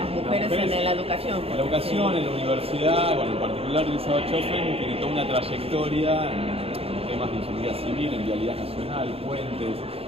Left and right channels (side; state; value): left; late; 0.28 ms